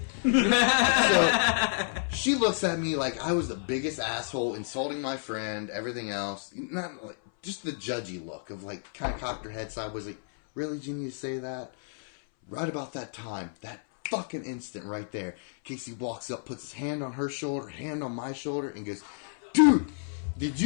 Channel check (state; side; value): silent; right; 58 dB below the other